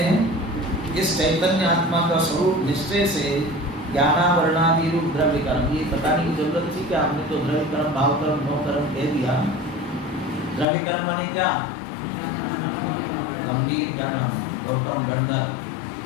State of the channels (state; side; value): drops out; right; at 10.7 s